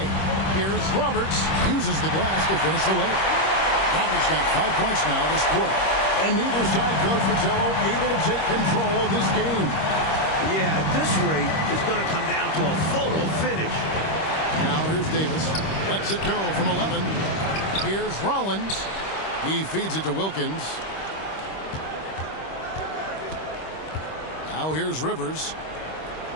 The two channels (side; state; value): right; late; 26 ms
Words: Here's Roberts. Uses the glass to finish the layup. Roberts got 5 points now this quarter. And neither side, Coach Fratello, able to take control of this game. Yeah, at this rate, it's going to come down to a photo finish. Now here's Davis. Lets it go from 11. Here's Rollins. He feeds it to Wilkins. Now here's Rivers.